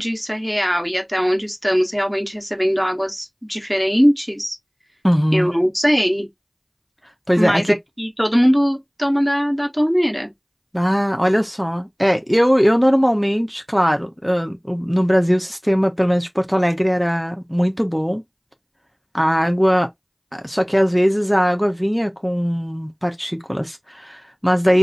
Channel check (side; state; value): both; identical; correlation 1.00